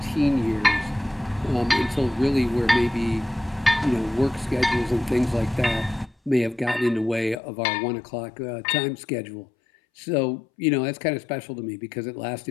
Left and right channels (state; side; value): drops out; right; at 7.4 s